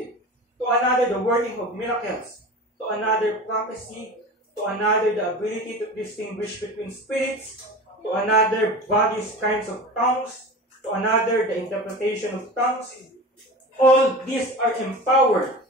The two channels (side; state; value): both; normal; correlation 0.33